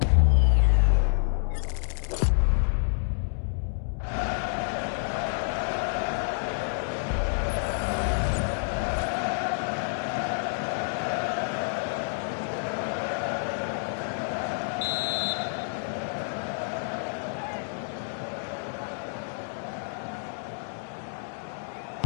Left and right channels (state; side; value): silent; right; digital silence